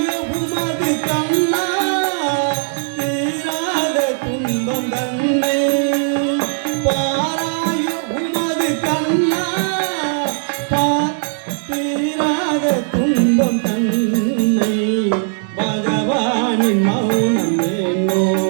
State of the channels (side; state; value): left; silent; digital silence